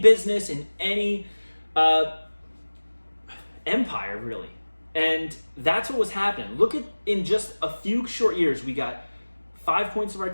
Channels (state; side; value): inverted; both; correlation -1.00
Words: in any empire, really. And that's what was happening. Look at, in just a few short years, we got 5 points of